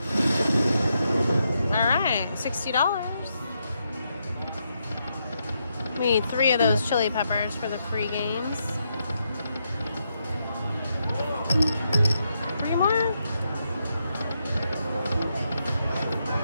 All right, $60. We need 3 of those chili peppers for the free games. 3 more?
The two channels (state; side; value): inverted; both; correlation -0.81